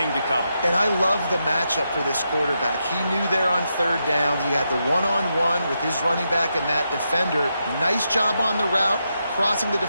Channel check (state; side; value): inverted; both; correlation -0.84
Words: to cover. And I love the matchup for this quarterback. He knew there on 3rd down. He had the one-on-one with his running back and that defender. Nice job on the route, crossing the